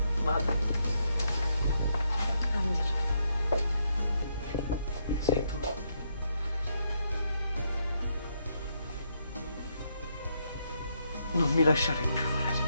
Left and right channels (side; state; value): both; inverted; correlation -0.77